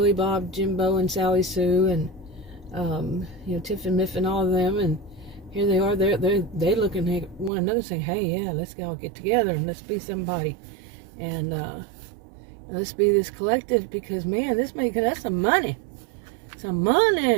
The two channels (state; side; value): drops out; left; at 7.5 s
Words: Bob, Jimbo, and Sally Sue, and Tiff and Miff and all of them, and here they are, they're looking at one another saying, hey, yeah, let's all get together and let's be somebody. And Let's be this collective, because man, this making us some money. Some